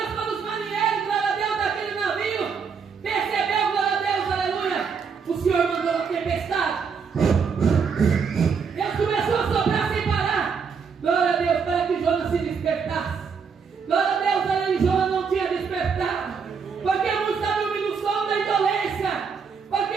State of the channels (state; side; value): quieter; left; 6.0 dB